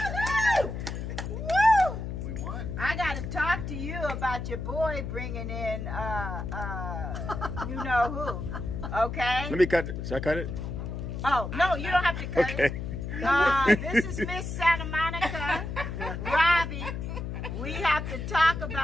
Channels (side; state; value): left; noise; hum, 5 dB below the sound